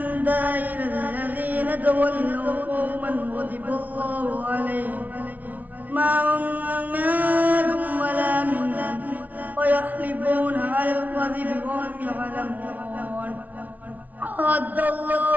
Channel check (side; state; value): left; late; 0.075 ms